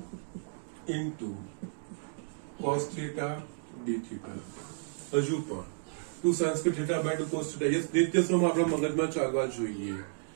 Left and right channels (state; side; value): silent; left; digital silence